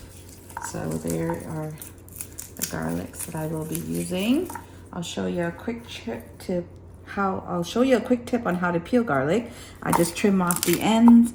So there are the garlics that I will be using. I'll show you a quick tip on how to peel garlic. I just trim off the ends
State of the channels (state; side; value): identical; both; correlation 1.00